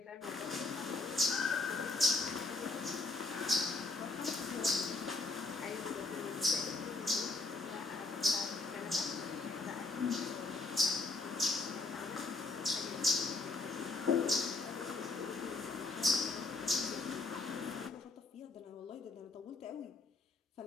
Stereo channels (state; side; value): quieter; right; 3.4 dB